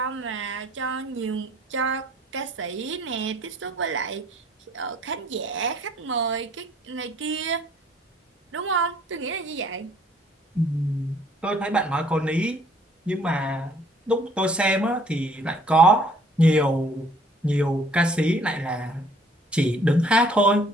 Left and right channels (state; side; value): normal; both; correlation 0.59